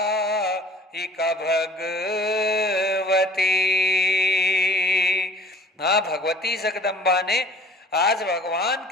भगवती। हाँ, भगवती जगदम्बा ने आज भगवान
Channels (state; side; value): normal; both; correlation 0.50